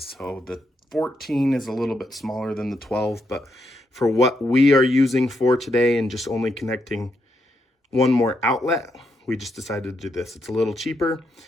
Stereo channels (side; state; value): both; normal; correlation 0.80